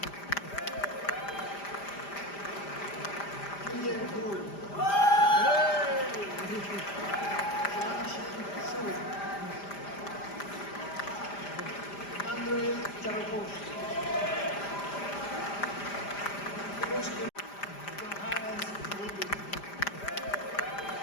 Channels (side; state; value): right; late; 5.0 ms